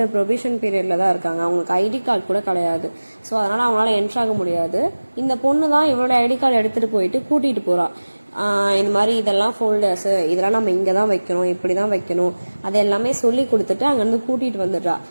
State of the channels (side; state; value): both; inverted; correlation -1.00